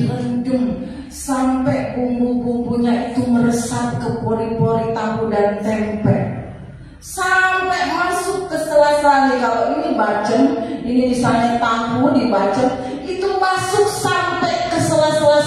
sampai bumbu-bumbunya itu meresap ke pori-pori tahu dan tempe, sampai masuk ke sela-sela. Kalau ini bacem, ini misalnya tahu dibacem, itu masuk sampai ke sela-sela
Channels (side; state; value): both; identical; correlation 1.00